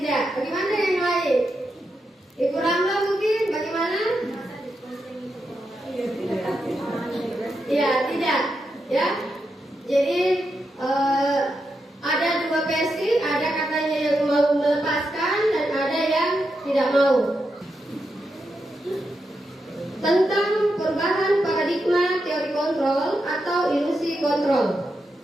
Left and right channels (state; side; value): normal; both; correlation 0.85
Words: Bagaimana yang lain? Ibu Ramla mungkin? Bagaimana? Ya, tidak. Ya. Jadi ada dua versi, ada katanya yang mau melepaskan dan ada yang tidak mau. Tentang perubahan paradigma teori kontrol atau ilusi kontrol.